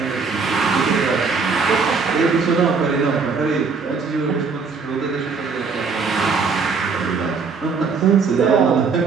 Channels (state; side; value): quieter; left; 5.1 dB